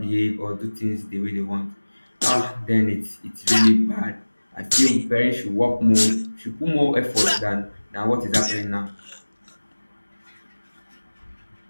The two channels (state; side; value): inverted; both; correlation -1.00